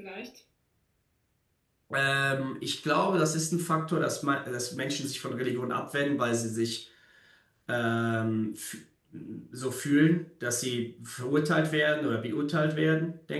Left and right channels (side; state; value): both; identical; correlation 1.00